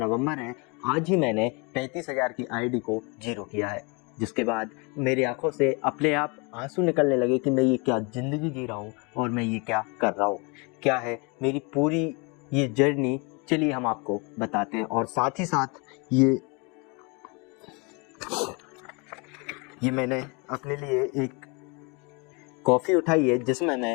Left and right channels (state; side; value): quieter; right; 30.7 dB